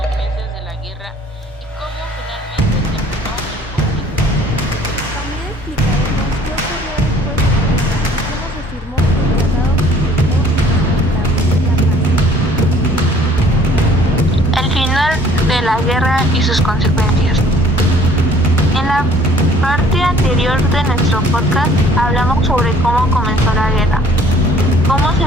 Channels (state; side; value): normal; both; correlation 0.56